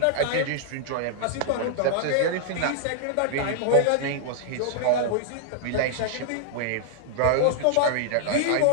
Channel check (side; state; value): both; different; correlation -0.01